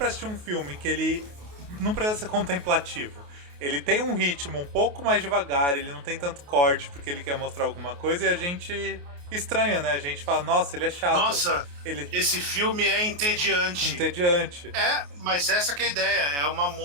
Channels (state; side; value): late; left; 28 ms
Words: assistir um filme que ele não precisa ser contemplativo. Ele tem um ritmo um pouco mais devagar, ele não tem tanto corte porque ele quer mostrar alguma coisa e a gente estranha, né? A gente fala, nossa, ele é chato. Nossa, Ele esse filme é entediante. entediante. Mas essa que é a ideia. É uma